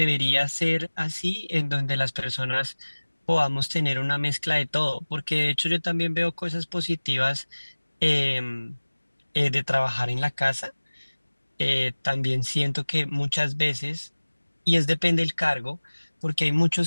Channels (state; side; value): inverted; both; correlation -1.00